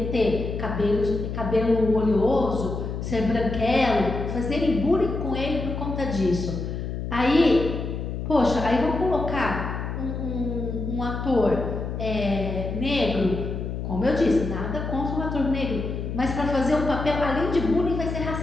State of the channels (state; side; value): noise; left; hum, 5 dB below the sound